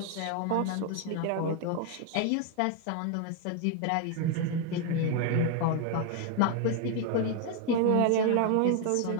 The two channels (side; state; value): both; different; correlation 0.01